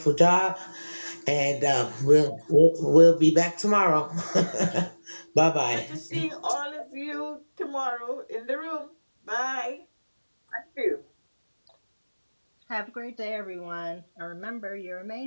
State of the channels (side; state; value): both; inverted; correlation -1.00